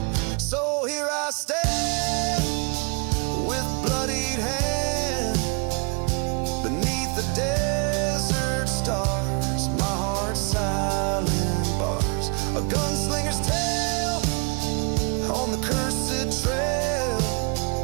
So here I stand, with bloodied hand, beneath the desert stars, my heart's silent bars, a gunslinger's tale on the cursed trail.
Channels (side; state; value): left; quieter; 34.8 dB